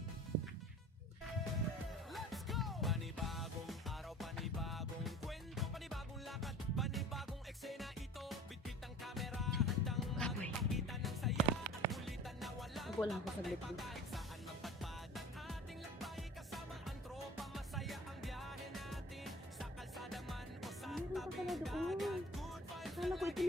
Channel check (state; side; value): normal; both; correlation 0.44